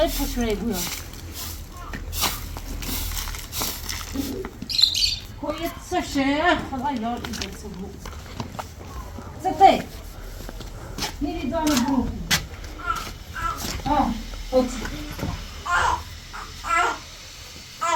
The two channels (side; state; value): both; identical; correlation 1.00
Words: پشمه بویا کویت سشه خدا یار ایده سبو سته میری دانه برو اوت